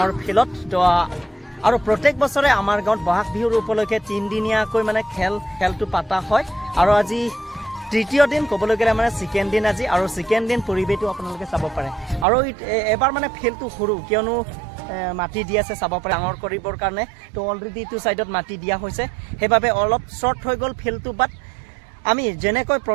ফিল্ডত তো আৰু প্ৰত্যেক বছৰে আমাৰ গাঁৱত বহাগ বিহুৰ উপলক্ষে 3 দিনীয়াকৈ মানে খেলটো পাতা হয় আৰু আজি তৃতীয় দিন ক'বলৈ গ'লে মানে সেকেন্ড দিন আজি আৰু সেকেন্ড দিন পৰিবেশটো আপোনালোকে চাব পাৰে আৰু এবাৰ মানে ফিল্ডটো সৰু কিয়নো মাটি দি আছে চাব পাৰে ডাঙৰ কৰিবৰ কাৰণে তো অলৰেডি টু সাইডত মাটি দিয়া হৈছে হেবাবে অলপ শৰ্ট হৈ গ'ল ফিল্ডটো বাট আমি যেনেকৈ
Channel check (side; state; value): left; drops out; at 12.2 s